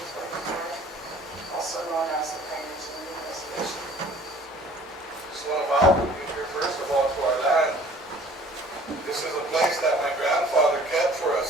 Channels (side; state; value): both; normal; correlation 0.51